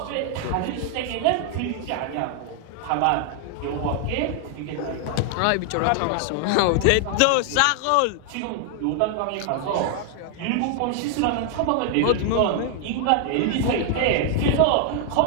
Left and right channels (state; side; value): different; both; correlation 0.00